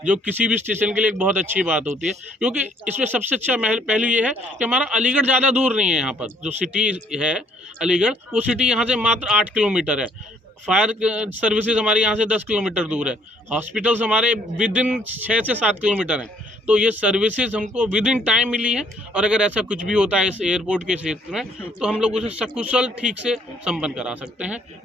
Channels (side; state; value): both; normal; correlation 0.63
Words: जो किसी भी स्टेशन के लिए एक बहुत अच्छी बात होती है। क्योंकि इसमें सबसे अच्छा पहलू ये है कि हमारा अलीगढ़ ज़्यादा दूर नहीं है। यहाँ पर जो सिटी है अलीगढ़, वो सिटी यहाँ से मात्र 8 किलोमीटर है। फायर सर्विसेज हमारे यहाँ से 10 किलोमीटर दूर है। हॉस्पिटल्स हमारे विद इन 6 से 7 किलोमीटर हैं। तो ये सर्विसेज हमको विद इन टाइम मिली है, और अगर ऐसा कुछ भी होता है इस एयरपोर्ट के क्षेत्र में, तो हम लोग उसे सकुशल ठीक से संपन्न करा सकते हैं